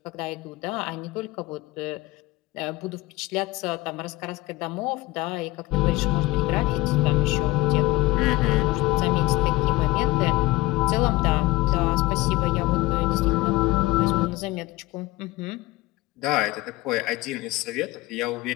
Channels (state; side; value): quieter; right; 19.5 dB